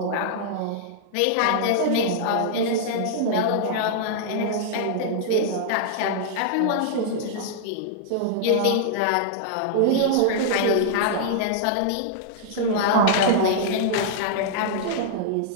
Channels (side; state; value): both; different; correlation -0.01